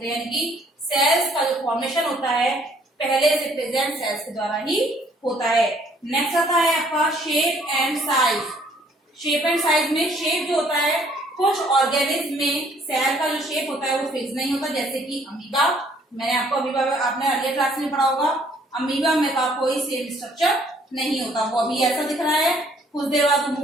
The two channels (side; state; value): both; normal; correlation 0.62